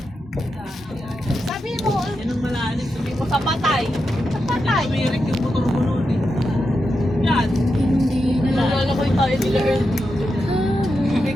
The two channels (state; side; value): normal; both; correlation 0.87